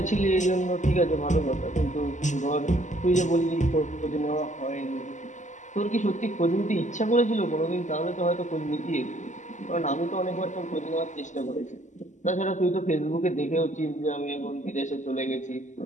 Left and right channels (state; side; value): late; right; 0.35 ms